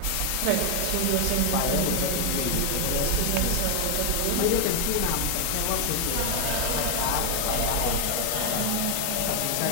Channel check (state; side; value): different; both; correlation 0.00